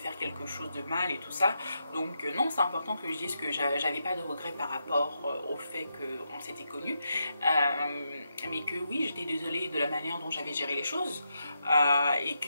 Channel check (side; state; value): both; inverted; correlation -0.84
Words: quelque chose de mal et tout ça. Donc non, c'est important que je dise que j'avais pas de regrets par rapport au fait qu'on s'était connus, mais que oui, j'étais désolée de la manière dont j'avais géré les choses, et